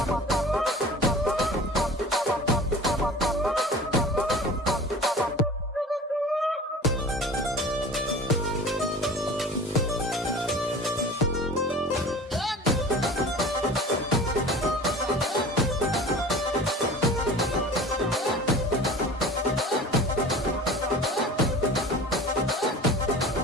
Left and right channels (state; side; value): normal; both; correlation 0.39